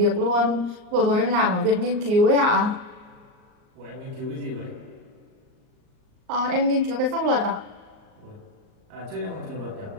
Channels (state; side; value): late; left; 38 ms